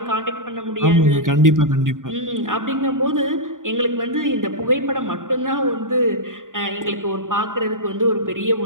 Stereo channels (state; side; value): late; left; 0.89 ms